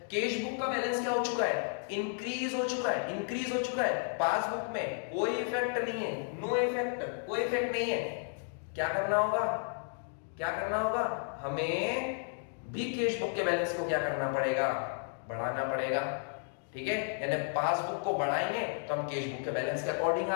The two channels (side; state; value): right; silent; 56 dB below the other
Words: कैश बुक का बैलेंस क्या हो चुका है, इंक्रीज हो चुका है, पासबुक में कोई इफेक्ट नहीं है, नो इफेक्ट, कोई इफेक्ट नहीं है। क्या करना होगा, हमें भी कैश बुक के बैलेंस को क्या करना पड़ेगा, बढ़ाना पड़ेगा। ठीक है? यानी पासबुक को बढ़ाएंगे तो हम कैश बुक के बैलेंस के अकॉर्डिंग